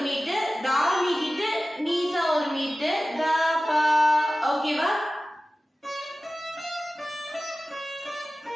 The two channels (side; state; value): both; normal; correlation 0.96